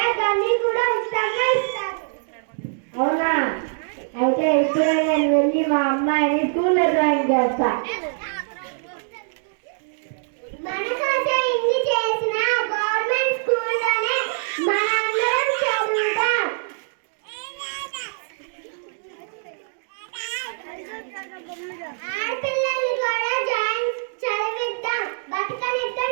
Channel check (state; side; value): silent; left; digital silence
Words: అన్ని కూడా ఉచితంగా ఇస్తారు. అవునా? అయితే ఇప్పుడే నేను వెళ్ళి మా అమ్మాయిని స్కూల్లో జాయిన్ చేస్తా. మన కోసం ఇన్ని చేసిన గవర్నమెంట్ స్కూల్లోనే మనందరం చదువుతాం. ఆడపిల్లల్ని కూడా చదివిద్దాం, బతకనిద్దాం,